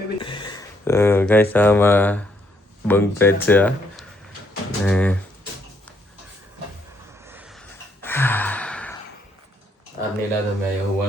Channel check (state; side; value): normal; both; correlation 0.72